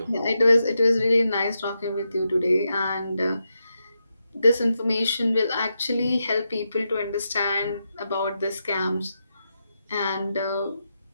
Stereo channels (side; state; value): both; inverted; correlation -0.86